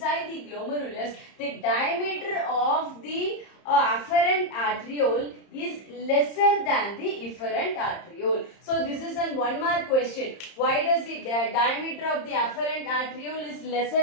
the glomerulus, the diameter of the afferent arteriole is lesser than the efferent arteriole. So this is a 1 mark question. Why does the diameter of the afferent arteriole is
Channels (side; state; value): right; late; 30 ms